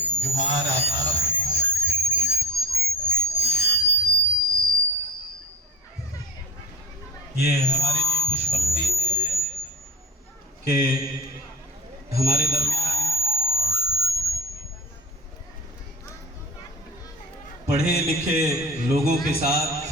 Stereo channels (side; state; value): both; normal; correlation 0.33